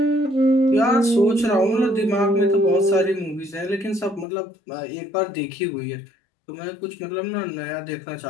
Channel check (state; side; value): drops out; right; at 4.2 s